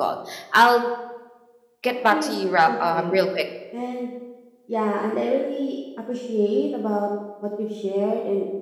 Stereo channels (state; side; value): identical; both; correlation 1.00